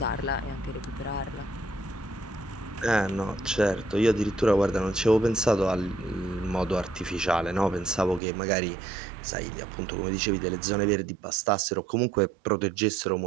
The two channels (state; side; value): drops out; left; at 8.2 s